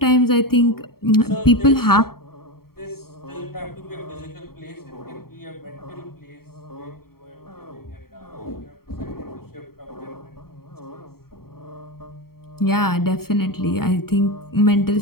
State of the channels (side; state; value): right; late; 0.94 ms